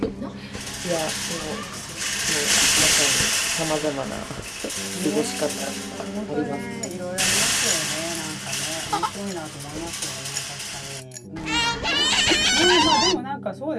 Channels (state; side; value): identical; both; correlation 1.00